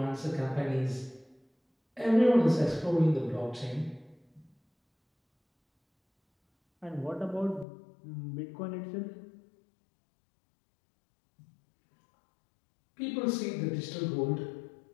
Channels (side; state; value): right; drops out; at 7.7 s